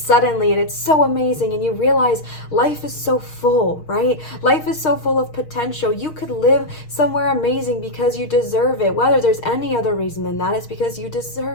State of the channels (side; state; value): right; late; 6.4 ms